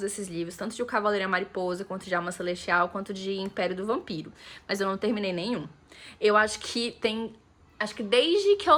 esses livros, tanto de O Cavaleiro e a Mariposa, quanto de Alma Celestial, quanto de Império do Vampiro. Mas eu não terminei nenhum. Eu acho que acho que desde que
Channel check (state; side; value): identical; both; correlation 1.00